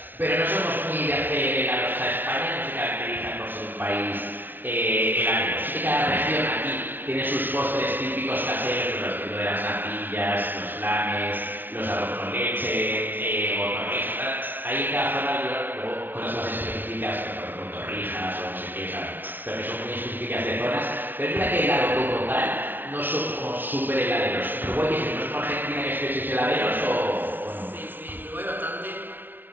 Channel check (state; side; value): late; left; 0.092 ms